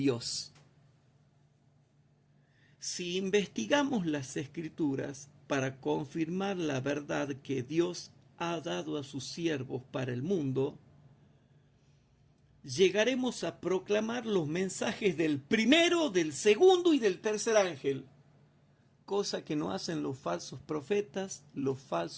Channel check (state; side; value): identical; both; correlation 1.00